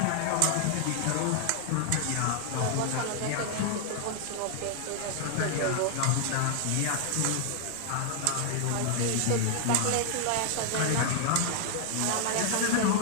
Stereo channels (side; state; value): both; different; correlation -0.01